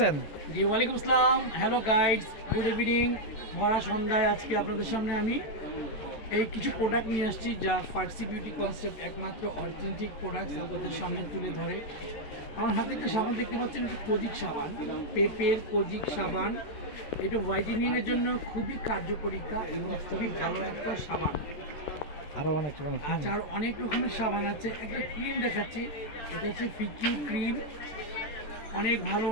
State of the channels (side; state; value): right; late; 14 ms